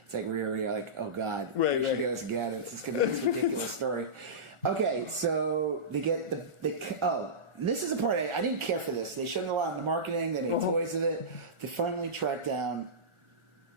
it's like you're like, oh god, right, she goes again. It's just gonna be this ridiculous story. Okay, so they get this is a part I didn't care for this. They showed a lot in the marketing. They made toys of it. They finally tracked down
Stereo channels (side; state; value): left; late; 1.4 ms